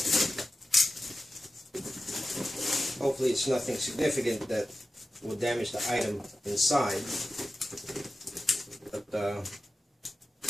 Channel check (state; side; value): normal; both; correlation 0.93